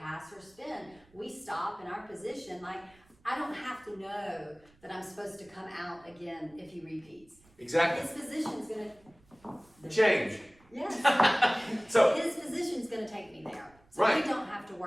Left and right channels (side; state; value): right; noise; rumble, 30 dB below the sound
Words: pass or spin. We stop in our position. Like, I don't have to know that I'm supposed to come out again if he repeats. Exactly. His position's gonna change. Yes. So his position's gonna take me there. So right. we don't have to